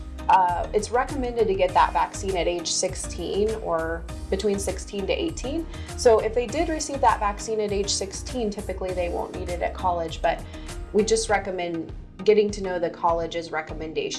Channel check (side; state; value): both; identical; correlation 1.00